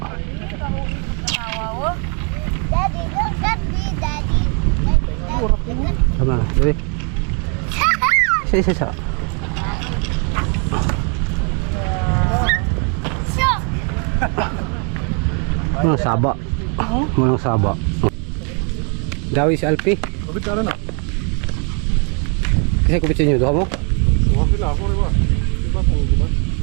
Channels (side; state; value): left; quieter; 37.6 dB